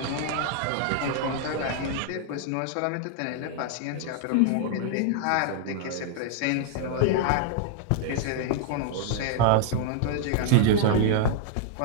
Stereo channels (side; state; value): both; different; correlation 0.00